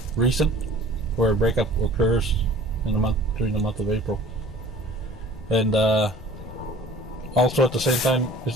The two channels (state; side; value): normal; both; correlation 0.47